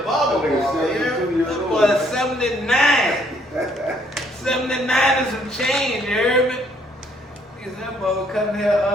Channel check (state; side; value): normal; both; correlation 0.66